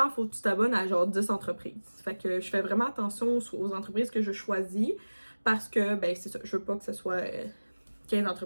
faut que tu t'abonnes à genre 10 entreprises. Fait que je fais vraiment attention aux entreprises que je choisis parce que, ben, c'est ça, je veux pas que ce soit 15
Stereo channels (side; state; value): both; inverted; correlation -1.00